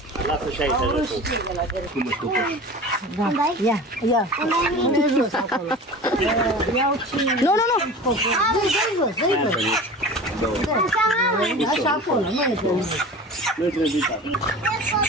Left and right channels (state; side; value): normal; both; correlation 0.36